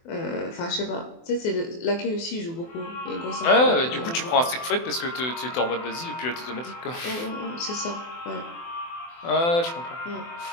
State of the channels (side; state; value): right; late; 24 ms